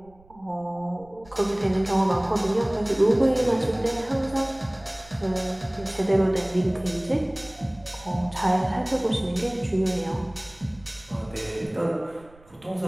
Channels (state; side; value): noise; right; rumble, 26 dB below the sound